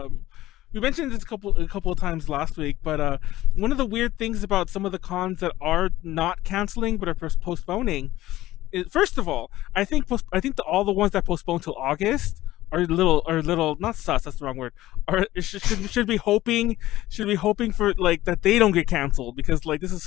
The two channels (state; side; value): quieter; right; 15.8 dB